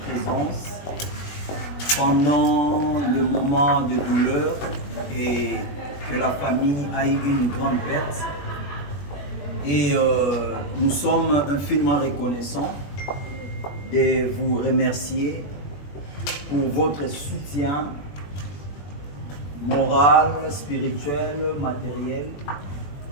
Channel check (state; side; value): late; right; 21 ms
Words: présence pendant le moment de douleur et que la famille a eu une grande perte. Et nous sommes infiniment reconnaissants de vous remercier pour votre soutien moral, spirituel, matériel.